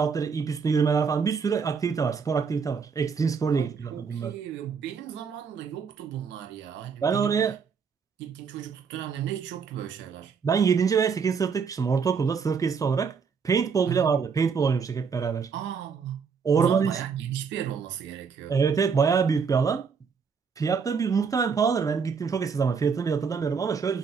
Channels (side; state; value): left; quieter; 5.9 dB